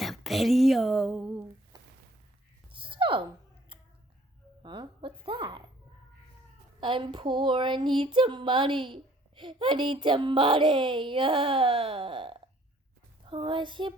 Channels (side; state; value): both; normal; correlation 0.58